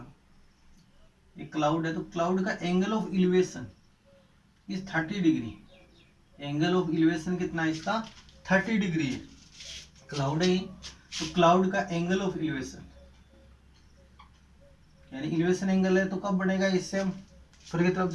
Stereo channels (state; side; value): identical; both; correlation 1.00